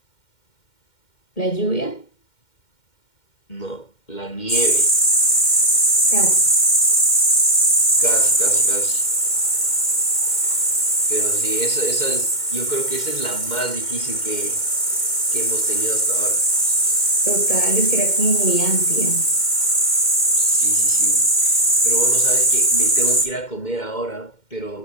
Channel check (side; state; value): right; late; 2.1 ms